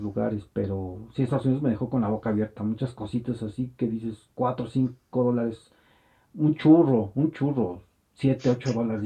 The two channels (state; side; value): identical; both; correlation 1.00